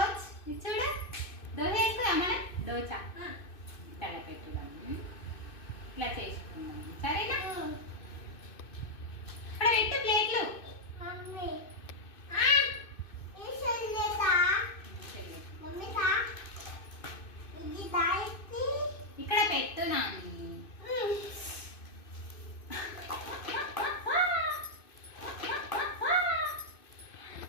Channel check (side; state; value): right; late; 2.6 ms